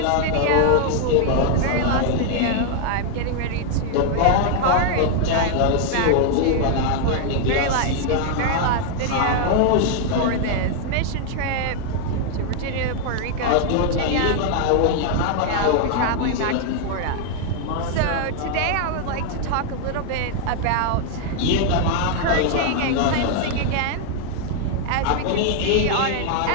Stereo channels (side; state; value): both; different; correlation 0.00